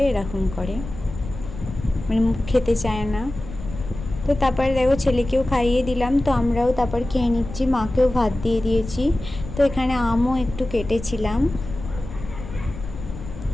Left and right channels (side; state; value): left; noise; rumble, 11 dB below the sound